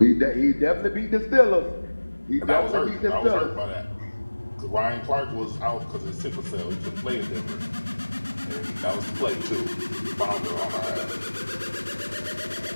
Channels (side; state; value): both; inverted; correlation -1.00